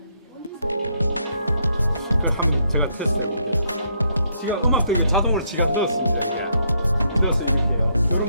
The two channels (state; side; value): inverted; both; correlation -0.74